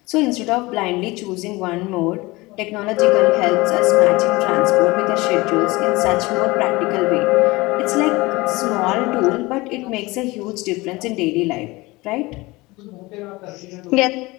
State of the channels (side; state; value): right; quieter; 22.0 dB